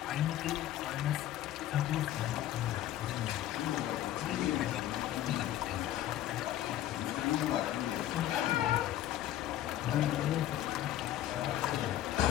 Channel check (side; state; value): right; quieter; 12.8 dB